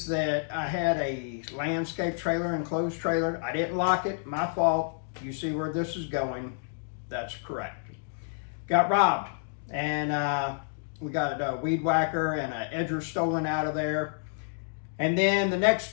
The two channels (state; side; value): silent; right; digital silence